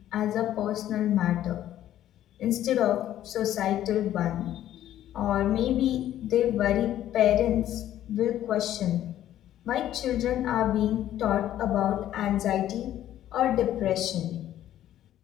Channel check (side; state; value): right; quieter; 12.2 dB